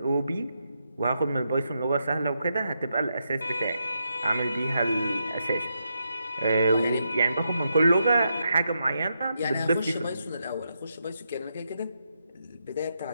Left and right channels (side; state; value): both; inverted; correlation -0.83